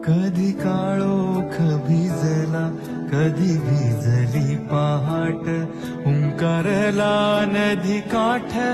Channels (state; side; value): identical; both; correlation 1.00